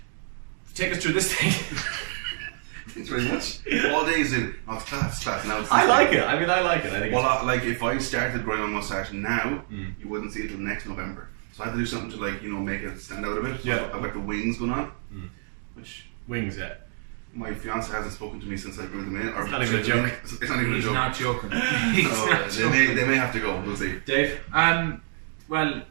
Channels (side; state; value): left; silent; 60 dB below the other